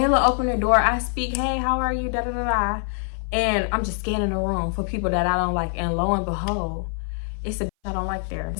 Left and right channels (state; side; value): silent; right; 59 dB below the other